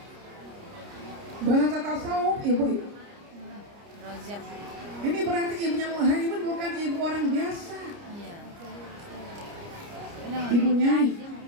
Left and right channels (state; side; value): late; left; 29 ms